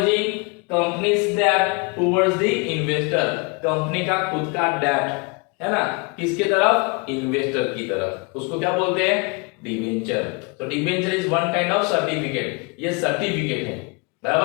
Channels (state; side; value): quieter; right; 31.6 dB